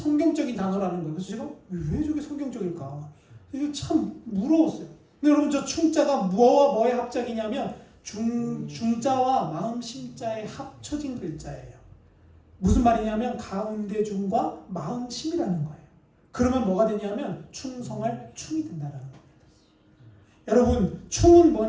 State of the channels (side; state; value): both; identical; correlation 1.00